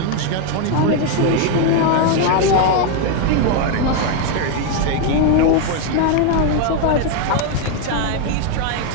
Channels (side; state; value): both; different; correlation 0.01